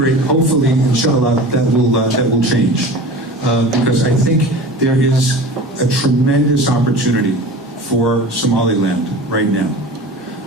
hopefully, inshallah, that will change. Because I think there is a tremendous opportunity for Somaliland right now.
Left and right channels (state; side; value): normal; both; correlation 0.37